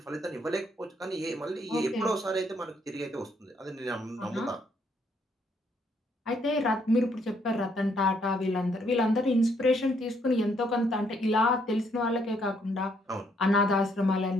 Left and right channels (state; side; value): normal; both; correlation 0.71